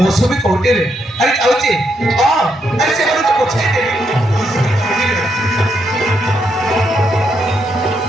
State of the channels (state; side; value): normal; both; correlation 0.78